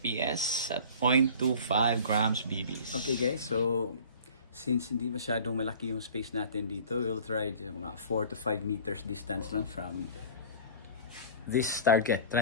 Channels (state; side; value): inverted; both; correlation -0.43